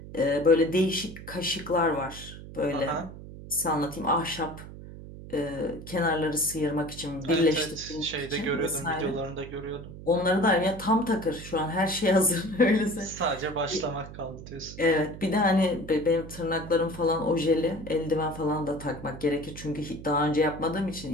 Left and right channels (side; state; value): right; noise; hum, 14 dB below the sound